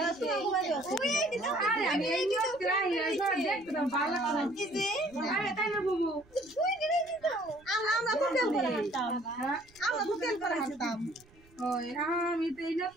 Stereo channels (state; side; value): noise; right; rumble, 28 dB below the sound